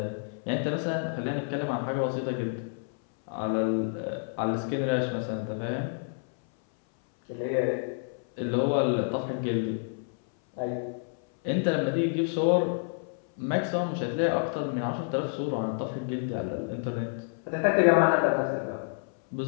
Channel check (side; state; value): right; silent; 59 dB below the other